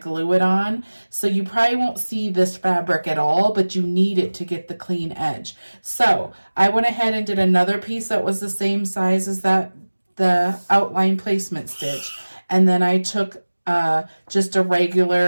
it on. So you probably won't see this fabric at all, but you need it to get the clean edge. So I went ahead and did another piece that was the same size as that, the outline placement stitch. And then I took just a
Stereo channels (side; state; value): both; inverted; correlation -1.00